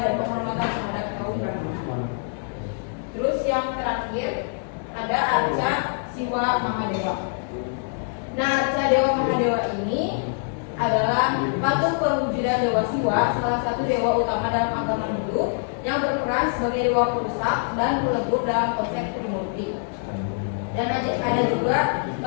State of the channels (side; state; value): right; silent; digital silence